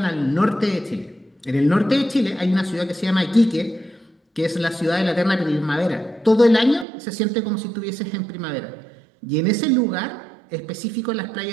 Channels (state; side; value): drops out; left; at 6.9 s